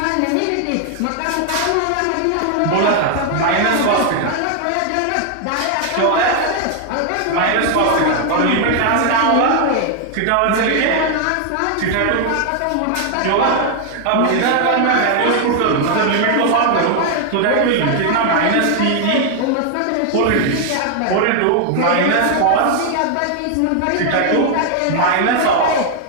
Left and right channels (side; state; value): both; different; correlation 0.00